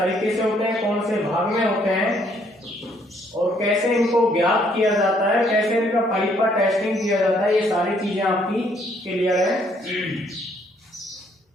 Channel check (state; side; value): normal; both; correlation 0.67